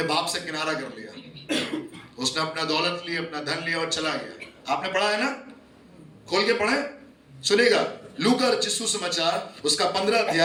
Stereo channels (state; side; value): identical; both; correlation 1.00